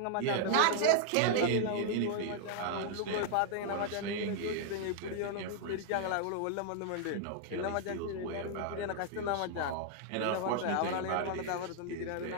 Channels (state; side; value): different; both; correlation -0.01